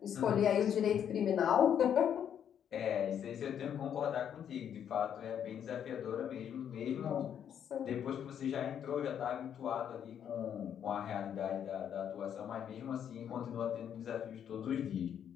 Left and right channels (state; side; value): quieter; right; 9.0 dB